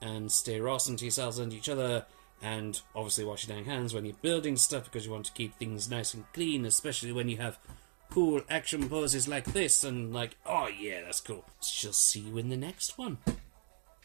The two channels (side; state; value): left; silent; 53 dB below the other